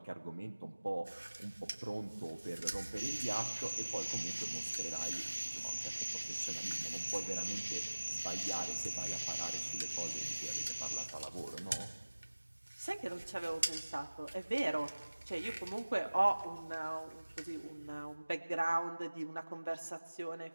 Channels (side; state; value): both; inverted; correlation -1.00